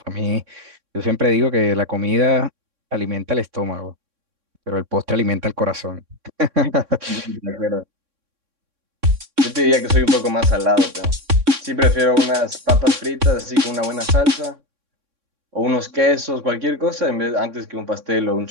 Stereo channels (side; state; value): left; late; 3.6 ms